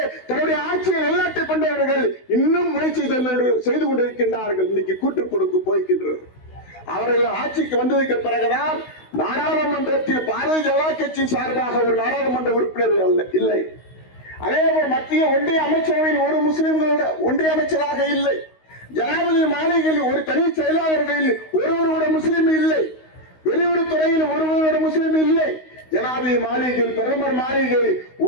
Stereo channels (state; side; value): late; right; 16 ms